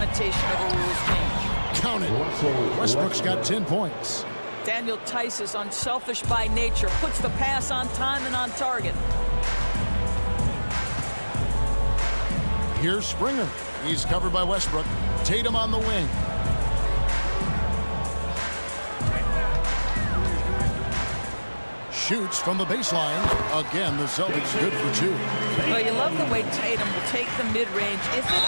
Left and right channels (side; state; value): both; inverted; correlation -1.00